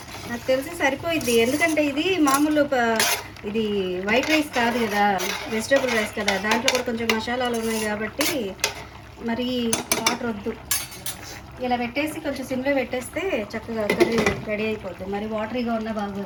నాకు తెలిసి సరిపోయిద్ది, ఎందుకంటే ఇది మామూలు ఇది వైట్ రైస్ కాదు కదా, వెజిటేబుల్ రైస్ కదా, దాంట్లో కూడా కొంచెం మసాలాలు ఉన్నాయి కాబట్టి మరి వాటర్ వద్దు. ఇలా పెట్టేసి కొంచెం సిమ్లో పెట్టేస్తే చక్కగా కర్రీ రెడీ అయిపోద్ది, మరి వాటరీగా ఉన్నా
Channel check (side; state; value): both; identical; correlation 1.00